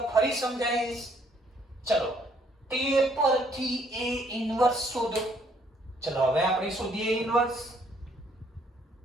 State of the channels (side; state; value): both; normal; correlation 0.66